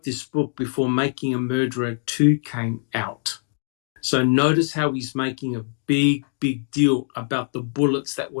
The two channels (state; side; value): silent; right; digital silence